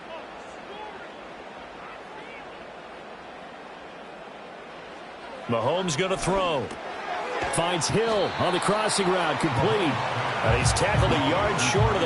Mahomes going to throw. Finds Hill on the crossing route, complete. And he's tackled a yard short of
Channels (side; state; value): both; identical; correlation 1.00